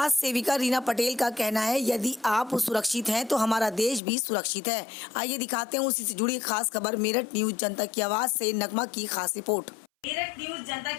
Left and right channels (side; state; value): right; drops out; at 4.0 s